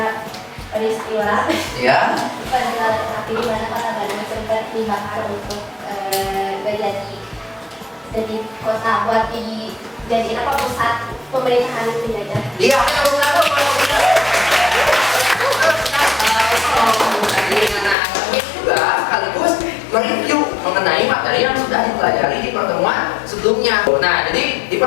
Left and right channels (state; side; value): drops out; right; at 17.9 s